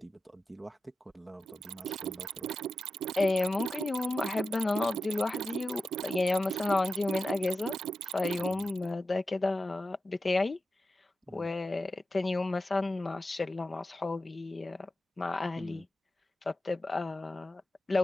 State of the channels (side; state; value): both; normal; correlation 0.91